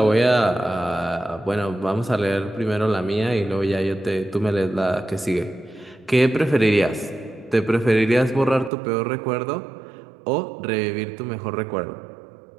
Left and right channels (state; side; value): drops out; left; at 8.7 s